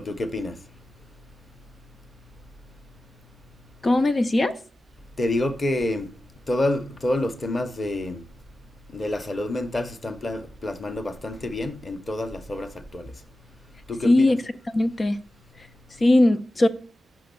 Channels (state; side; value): normal; both; correlation 0.94